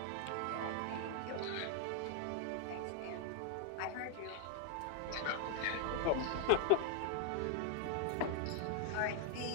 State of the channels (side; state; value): both; different; correlation 0.00